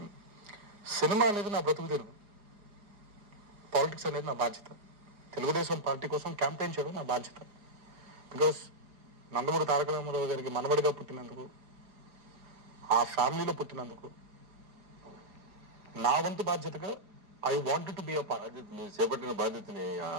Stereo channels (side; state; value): left; late; 4.9 ms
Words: సినిమా అనేది నా బ్రతుకు తెరుగు, పాలిటిక్స్ అనేది నా బాధ్యత. తెలుగుదేశం పార్టీ కోసం క్యాంపెయిన్ చేయడం నా బాధ్యత. బికాస్ నందమూరి తారక రామారావు గారికి మనవడిగా పుట్టినందుకు, ఆ ఫ్యామిలీలో పుట్టినందుకు నా వంతు బాధ్యతగా I wanted to be a part. చేపట్టిన బాధ్యతని